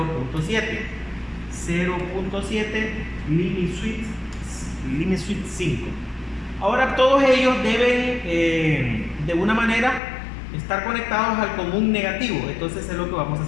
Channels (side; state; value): right; drops out; at 10.0 s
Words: 0.7 Limit Switch 5. Ahora todos ellos deben de una manera estar conectados al común negativo. Entonces es lo que vamos a